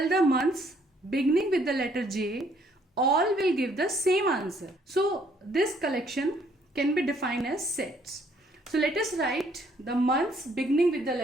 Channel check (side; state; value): both; normal; correlation 0.65